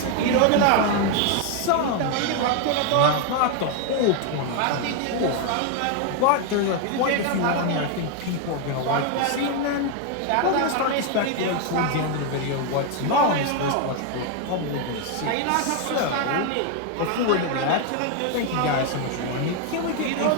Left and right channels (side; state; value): both; different; correlation 0.01